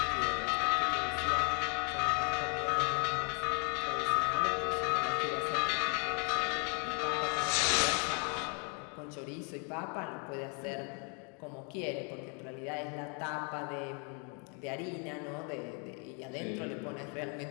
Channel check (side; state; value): right; quieter; 37.2 dB